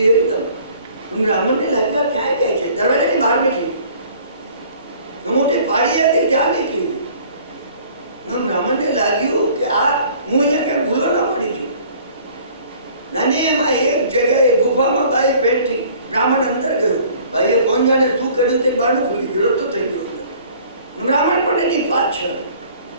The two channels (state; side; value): inverted; both; correlation -0.52